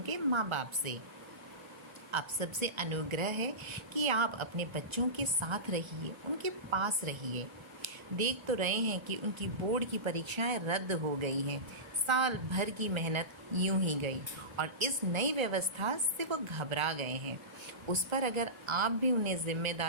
के माँ बाप से। आप सबसे अनुग्रह है कि आप अपने बच्चों के साथ रहिए, उनके पास रहिए। देख तो रहे हैं कि उनकी बोर्ड की परीक्षाएं रद्द हो गई हैं। साल भर की मेहनत यूं ही गई और इस नई व्यवस्था से वो घबरा गए हैं। उस पर अगर आप भी उन्हें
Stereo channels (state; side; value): late; left; 1.4 ms